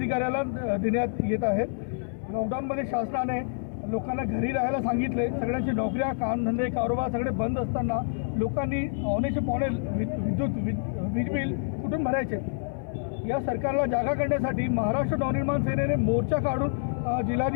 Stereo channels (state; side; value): silent; right; digital silence